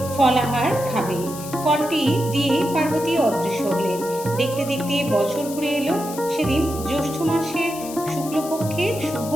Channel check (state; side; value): noise; left; hiss, 13 dB below the sound